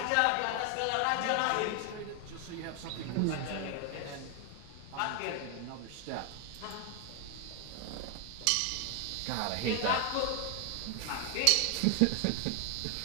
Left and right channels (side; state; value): both; different; correlation 0.00